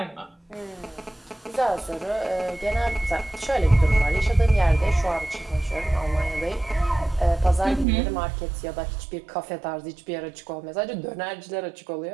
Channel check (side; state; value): left; drops out; at 7.9 s